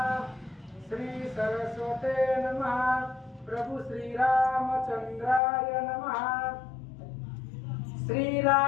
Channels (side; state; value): right; drops out; at 5.4 s